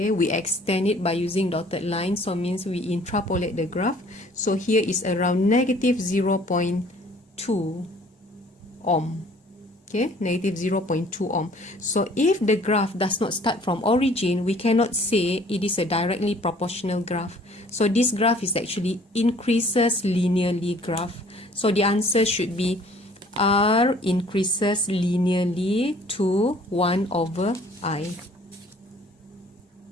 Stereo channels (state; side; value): normal; both; correlation 0.55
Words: we extend it by using dotted line, so means we interpolate the graph. So here is around negative 0.2 ohm. Okay, negative 0.2 ohm. So if the graph does not start from origin, we cannot say it is a directly proportional graph. So this graph is actually increases linearly graph. So the answer should be R increases linearly to 1 over I.